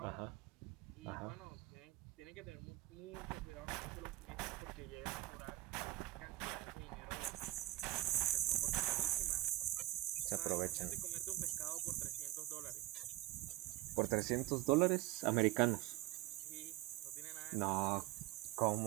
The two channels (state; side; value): quieter; left; 16.8 dB